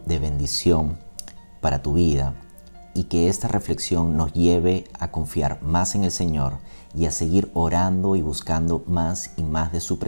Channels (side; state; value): both; inverted; correlation -1.00